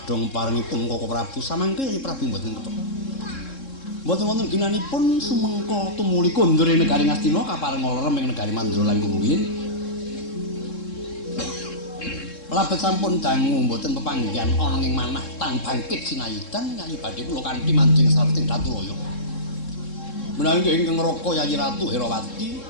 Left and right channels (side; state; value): right; late; 3.7 ms